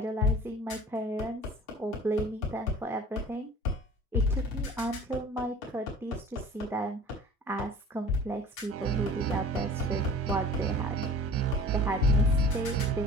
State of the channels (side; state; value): both; normal; correlation 0.44